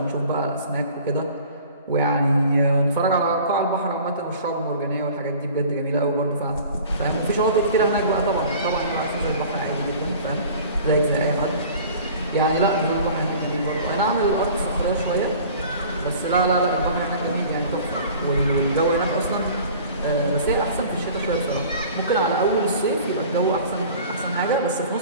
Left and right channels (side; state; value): both; inverted; correlation -0.45